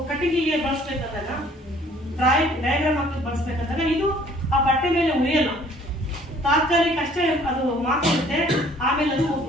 ಕಟ್ಟಿಗೆಗೆ ಬಳಸ್ಬೇಕಂದಾಗ, ಡಯಾಗ್ರಾಮ್ ಹಾಕಿ ಬಳಸ್ಬೇಕಂದಾಗ ಇದು ಆ ಬಟ್ಟೆ ಮೇಲೆ ಉಳಿಯಲ್ಲ, ತಾತ್ಕಾಲಿಕ ಅಷ್ಟೇ ಅದು ಮಾತಾಡುತ್ತೆ, ಆಮೇಲೆ ಅದು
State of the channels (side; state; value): both; normal; correlation 0.57